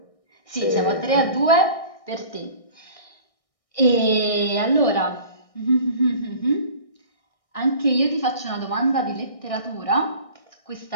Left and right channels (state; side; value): late; right; 1.6 ms